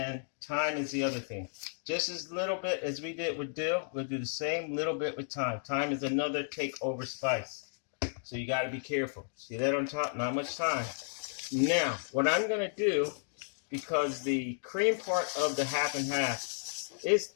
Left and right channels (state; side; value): silent; right; digital silence